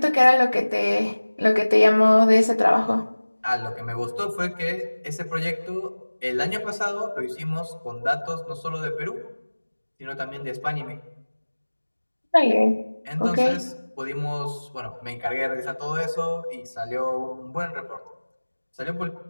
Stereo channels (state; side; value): inverted; both; correlation -1.00